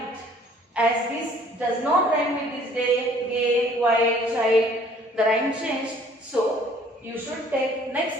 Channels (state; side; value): normal; both; correlation 0.57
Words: As this does not rhyme with this day, gay, white, child, the rhyme changed. So you should take